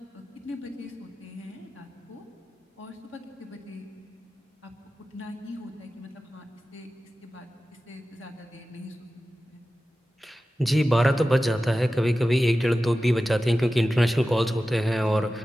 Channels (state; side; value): normal; both; correlation 0.94